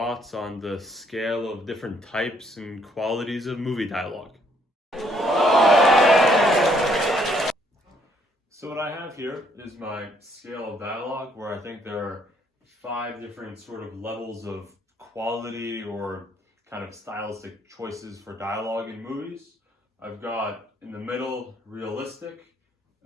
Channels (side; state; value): both; normal; correlation 0.67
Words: on the scale of different types and qualities of movie dialogue. So what I have here is my scale of dialogue, where I think there are 5 different sort of levels of quality or kind of stylistic choices for dialogue in movies. I've got in the middle realistic,